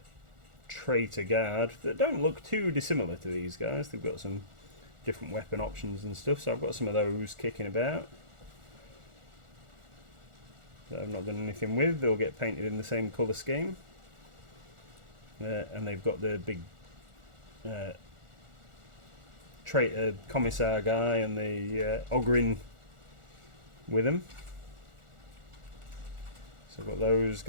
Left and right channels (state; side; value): late; left; 1.4 ms